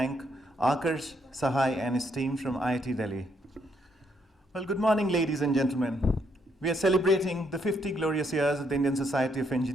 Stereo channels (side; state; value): both; normal; correlation 0.74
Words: Akarsh Sahai and his team from IIT Delhi. Well, good morning, ladies and gentlemen. We are celebrating the 50 glorious years of the Indian Society of